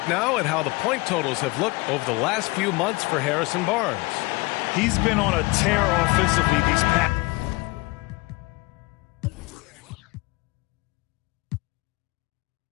now at how the point totals have looked over the last few months for Harrison Barnes. He's been on a tear offensively these past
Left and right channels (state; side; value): quieter; right; 23.7 dB